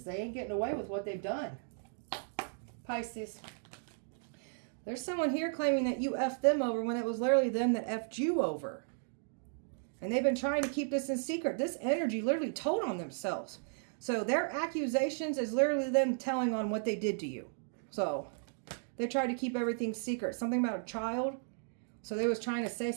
They ain't getting away with what they've done. Pisces. There's someone here claiming that you effed them over when it was literally them that effed you over. And they've been trying to keep this in secret. This energy literally told on themselves. So their accusations is literally them telling on what they did to you. So they tried to keep everything secret. Something about a child. So they was trying to say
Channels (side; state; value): left; silent; digital silence